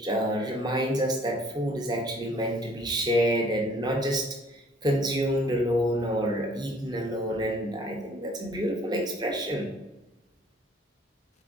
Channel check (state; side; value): normal; both; correlation 0.57